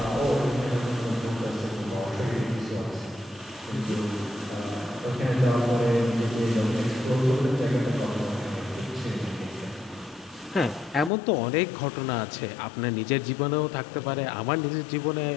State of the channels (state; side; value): drops out; right; at 11.1 s